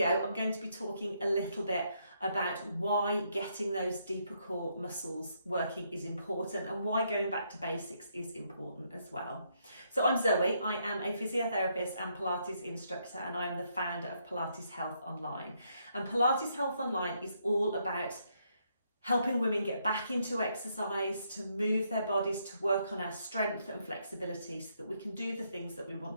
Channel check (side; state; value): both; inverted; correlation -0.75